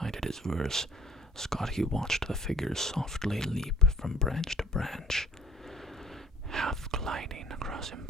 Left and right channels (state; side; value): normal; both; correlation 0.48